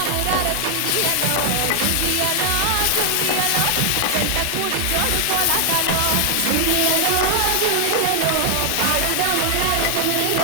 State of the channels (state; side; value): different; both; correlation 0.00